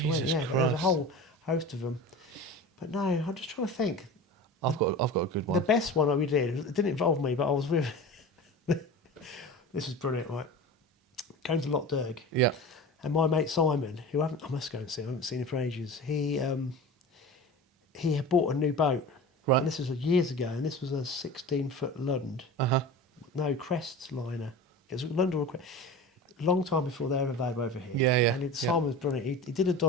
I went. Yeah, but there was a whole host of them. But no, I'm just trying to think. I've got a good one. The best one that we did, it didn't involve me, but I was with... This was brilliant, right? Going to Loch Derg. Yeah. And my mate Simon, who I must go and see, I haven't seen him for ages, he had bought a new boat. Right. And this was years ago, and this was a 16-foot Lund. Uh-huh. No, Crest liner. It was a Lund or a Crest. Long time before they ever available over here. Yeah. And Simon was brilliant. He did a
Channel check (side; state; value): both; normal; correlation 0.33